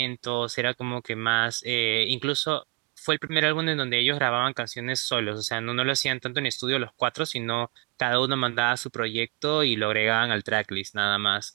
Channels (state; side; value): quieter; left; 24.7 dB